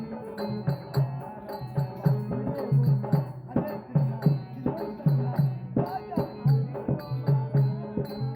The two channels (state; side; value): identical; both; correlation 1.00